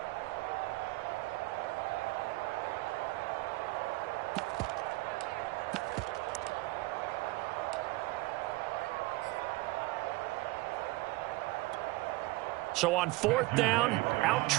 So on 4th down, out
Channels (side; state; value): left; quieter; 21.1 dB